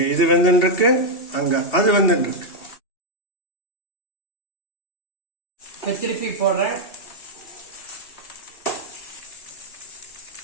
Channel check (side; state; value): right; late; 2.7 ms